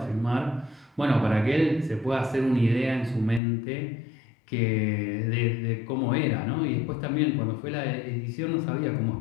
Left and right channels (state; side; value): drops out; right; at 3.4 s